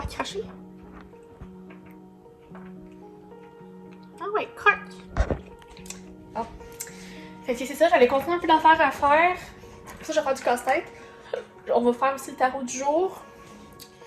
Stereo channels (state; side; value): identical; both; correlation 1.00